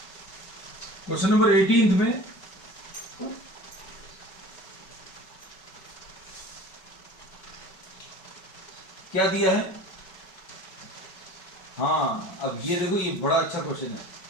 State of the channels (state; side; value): late; right; 5.3 ms